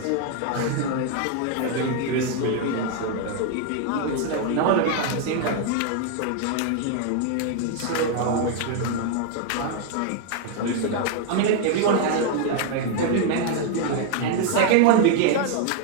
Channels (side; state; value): both; different; correlation 0.00